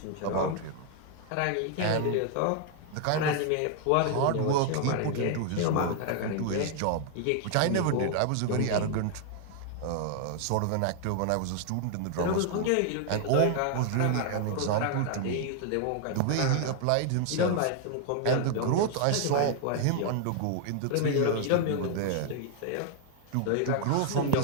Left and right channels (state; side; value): different; both; correlation 0.00